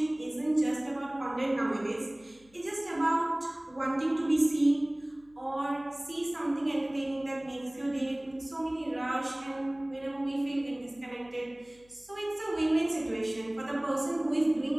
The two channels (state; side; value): noise; left; hum, 29 dB below the sound